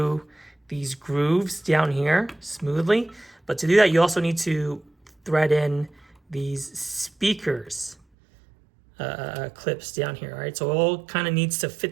these grooves down here smoothly. But to do that, you also need to thread in these speakers clips down here, all right? So it all kind of needs to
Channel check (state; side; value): drops out; left; at 8.0 s